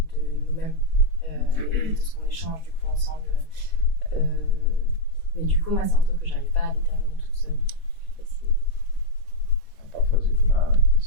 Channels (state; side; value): late; right; 4.2 ms